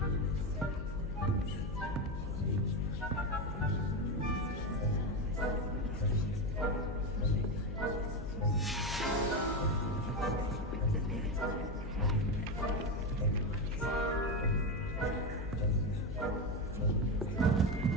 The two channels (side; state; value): left; noise; hum, 8 dB below the sound